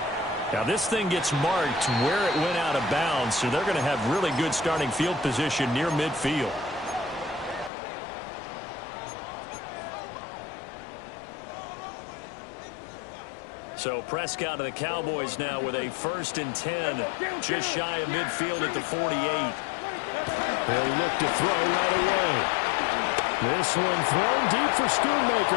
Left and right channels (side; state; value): right; drops out; at 7.7 s